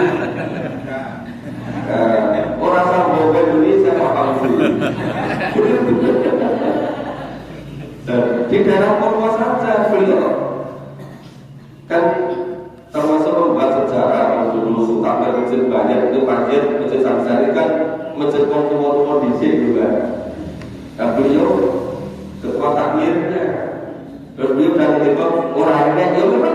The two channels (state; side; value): identical; both; correlation 1.00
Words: Orang Sambo Indonesia Pak Fauzi. Di daerah Purwo saja beliau kan termasuk membuat sejarah dulu sampai masjid banyak itu masjid samsari kan masjid Purwo di sini juga. Nah beliau ketua takmirnya, terus beliau dan itu orangnya ya memang